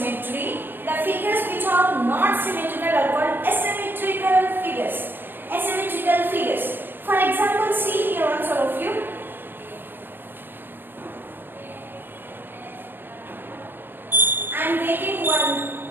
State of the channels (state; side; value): late; left; 0.096 ms